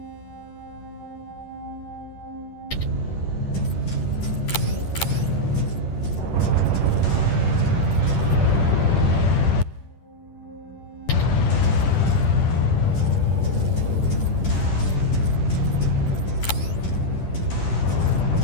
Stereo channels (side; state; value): right; late; 10 ms